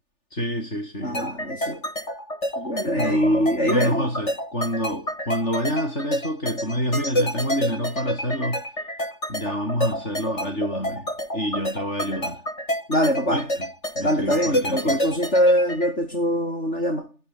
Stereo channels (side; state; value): right; late; 3.4 ms